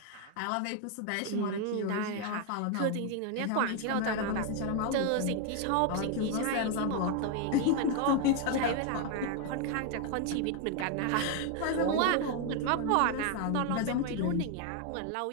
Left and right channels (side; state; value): both; different; correlation 0.01